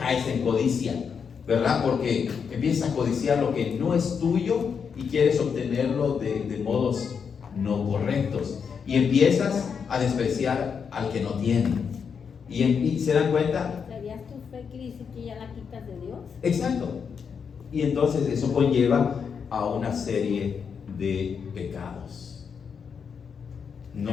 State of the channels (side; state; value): right; quieter; 6.5 dB